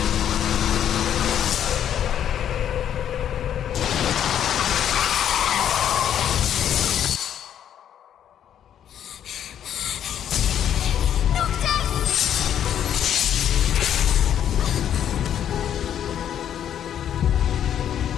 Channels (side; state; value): right; quieter; 9.8 dB